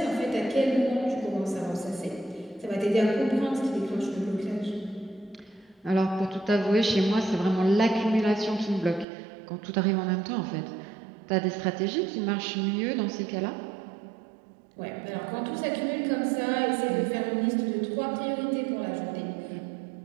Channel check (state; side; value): drops out; left; at 9.1 s